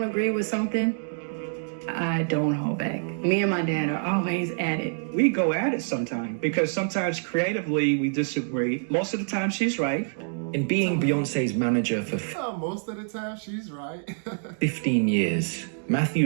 agree with something, I don't hold back. Me and my dad are always at it. We go at it sometimes because sometimes creatively we disagree. Most of the time she's right. In being Beyoncé's manager for Most of the time, she's right. 15 years, Matthew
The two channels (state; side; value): silent; left; digital silence